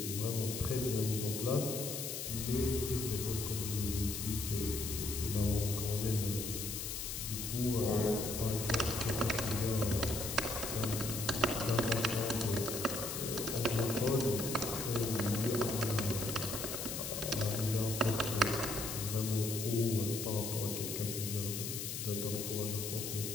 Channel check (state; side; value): noise; left; hiss, 4 dB below the sound